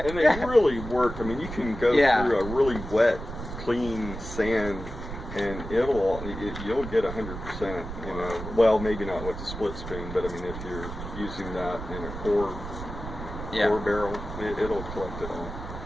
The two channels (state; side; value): noise; right; rumble, 9 dB below the sound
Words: And they really work. I mean, you can go through a really wet, clean sand, and you'll get 100%. You know, well, maybe not with the split spoon, but I mean, if you're using that in a core barrel, it'll collect it all.